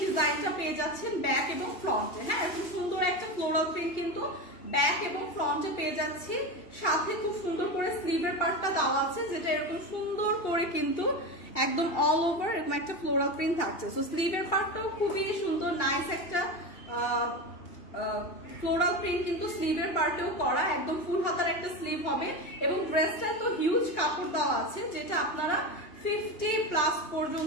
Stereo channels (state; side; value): late; right; 2.8 ms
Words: ডিজাইনটা পেয়ে যাচ্ছেন ব্যাক এবং ফ্রন্টে। হ্যাঁ, এত সুন্দর একটা ফ্লোরাল প্রিন্ট কিন্তু ব্যাক এবং ফ্রন্টে পেয়ে যাচ্ছি, সাথে খুব সুন্দর করে স্লিভের পার্টটা দেওয়া আছে, যেটা এরকম সুন্দর করে কিন্তু একদম অল ওভার এরকম একটা ফ্লোরাল প্রিন্ট থাকছে। সো স্লিভের পার্টটাও খুবই সুন্দর, নাইস একটা ফ্লোরাল প্রিন্ট কিন্তু স্লিভের পার্টেও করা, একদম ফুল হাতার একটা স্লিভ হবে এবং ড্রেসটা তো হিউজ কাপড় দেওয়া আছে, যেটা আপনারা 50+